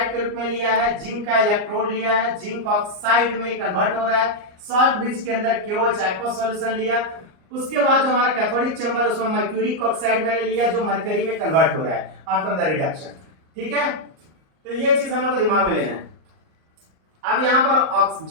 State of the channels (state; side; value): late; left; 38 ms